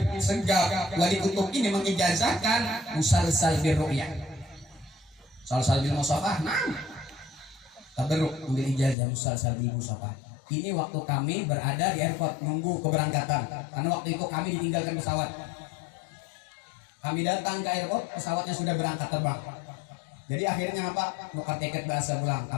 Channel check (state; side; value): drops out; right; at 9.0 s